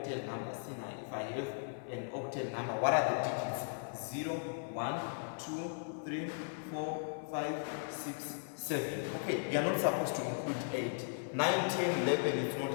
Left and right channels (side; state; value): right; silent; 53 dB below the other